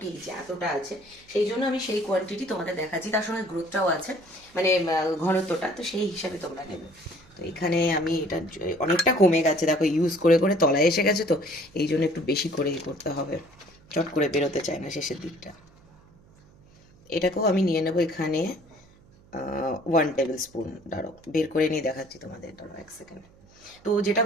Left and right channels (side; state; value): right; noise; hum, 27 dB below the sound